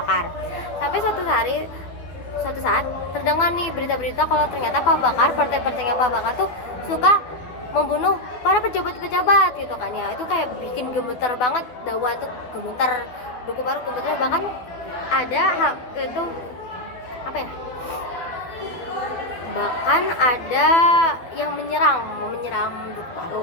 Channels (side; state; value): right; late; 12 ms